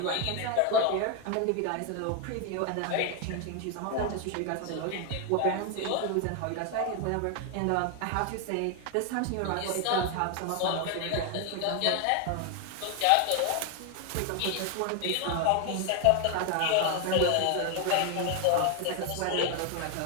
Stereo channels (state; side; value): different; both; correlation 0.01